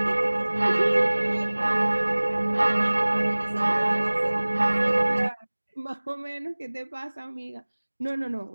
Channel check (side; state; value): both; inverted; correlation -1.00